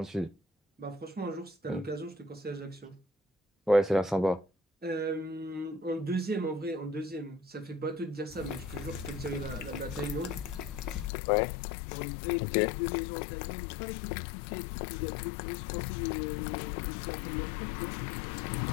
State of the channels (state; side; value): drops out; right; at 11.1 s